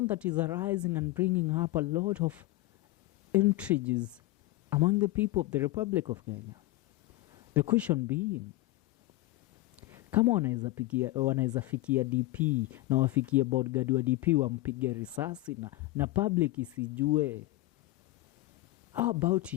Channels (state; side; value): quieter; right; 18.5 dB